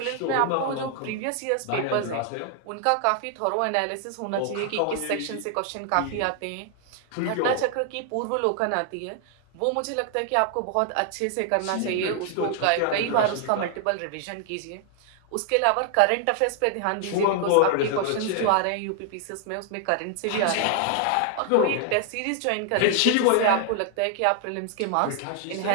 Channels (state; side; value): different; both; correlation 0.00